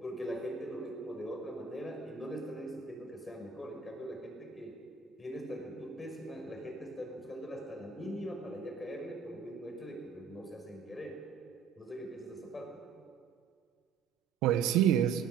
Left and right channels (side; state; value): left; quieter; 6.1 dB